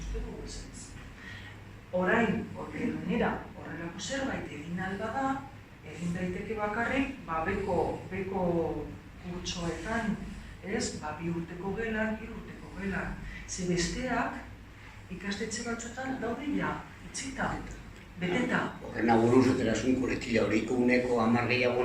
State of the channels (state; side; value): identical; both; correlation 1.00